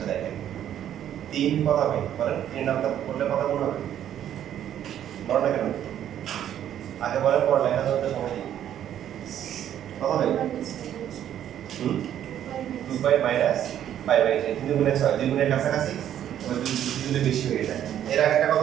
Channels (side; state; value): left; quieter; 10.6 dB